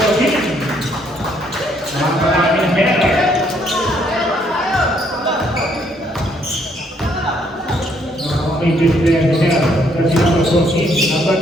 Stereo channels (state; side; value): normal; both; correlation 0.69